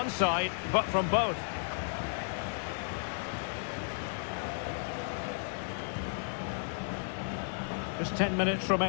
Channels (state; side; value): silent; right; digital silence